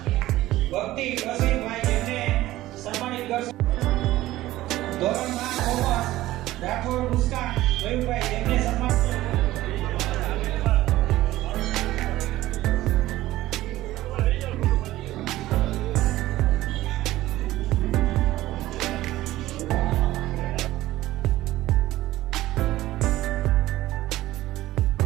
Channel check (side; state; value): left; quieter; 16.0 dB